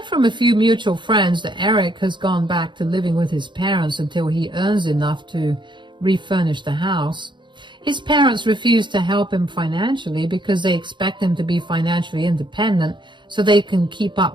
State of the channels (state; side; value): late; left; 0.23 ms